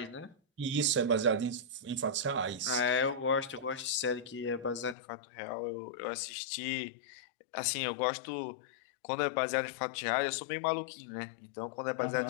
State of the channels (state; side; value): drops out; right; at 5.0 s